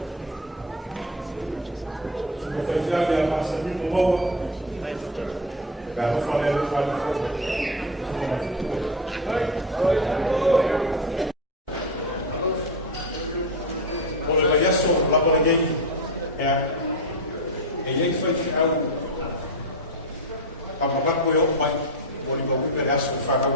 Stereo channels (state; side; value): normal; both; correlation 0.19